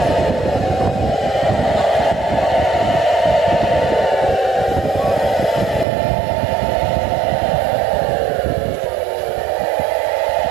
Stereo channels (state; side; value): drops out; left; at 5.9 s